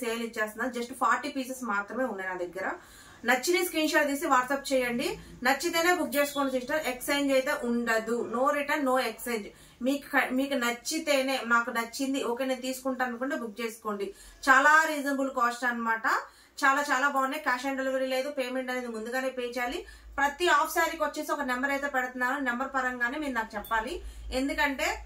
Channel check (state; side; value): identical; both; correlation 1.00